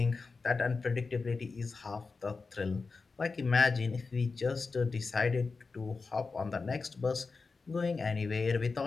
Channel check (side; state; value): right; quieter; 4.3 dB